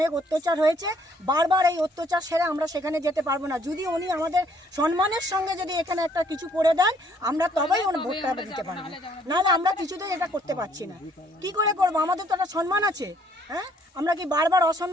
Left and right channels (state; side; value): normal; both; correlation 0.64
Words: অত্যাচার হয়েছে, বারবার এই অত্যাচার সেরে আমরা সেখানে যেতে পারবো না। যদি উনি আমাদের সম্মানের সঙ্গে যদি এখানে একটা কিছু করে দেন, আমরা তবেই ওনার ভোটটা দিতে পারবো। নাহলে আমরা কিছুতেই এটা করতে পারছি না। কি করে করবো? আমাদের তো একটা সম্মান আছে। হ্যাঁ, আমরা কি বারবার